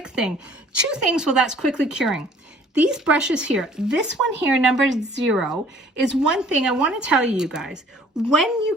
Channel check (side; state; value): both; normal; correlation 0.55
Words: thing. Two things while that's quickly curing. These brushes here, this one here, number 0, is one thing I want to tell you guys. When you